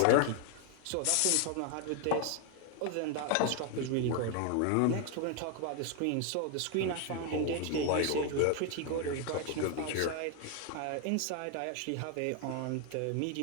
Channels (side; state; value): both; different; correlation 0.00